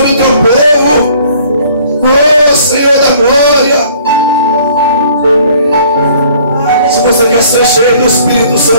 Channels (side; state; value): both; inverted; correlation -0.57